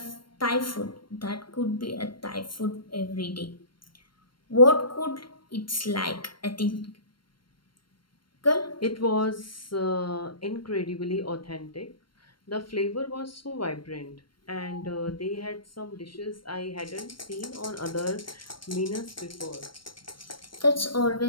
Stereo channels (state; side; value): late; right; 0.72 ms